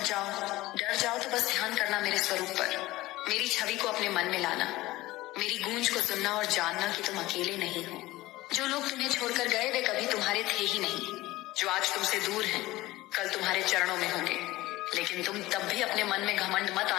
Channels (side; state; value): right; quieter; 18.1 dB